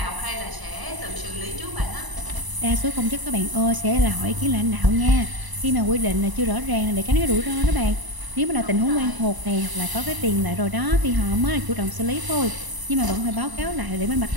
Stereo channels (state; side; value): late; left; 1.0 ms